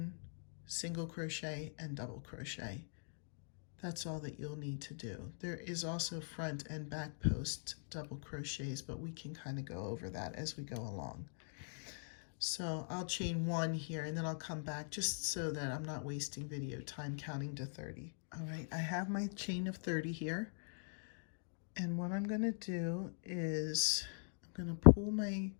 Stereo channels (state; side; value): silent; right; digital silence